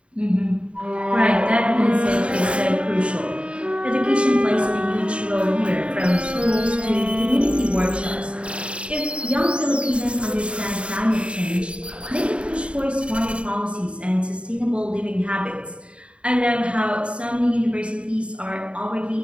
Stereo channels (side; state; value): left; late; 0.059 ms